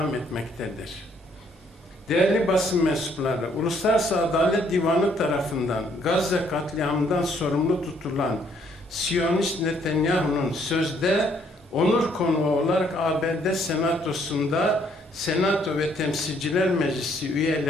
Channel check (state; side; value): normal; both; correlation 0.67